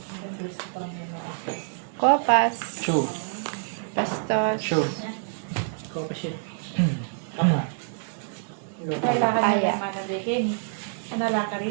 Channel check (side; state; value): left; silent; 60 dB below the other